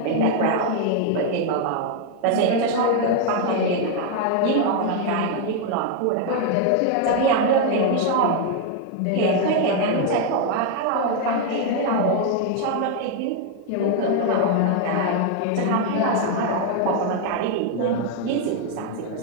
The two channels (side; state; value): both; different; correlation 0.01